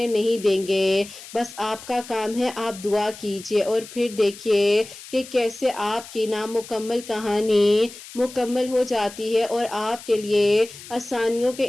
نہیں دیں گے۔ بس آپ کا کام ہے آپ دعا کیجئے اور پھر دیکھیے کہ کیسے آپ کی نامکمل کہانی مکمل ہو جاتی ہے اور آپ کے لیے آسانیوں کے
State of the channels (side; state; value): left; noise; hiss, 16 dB below the sound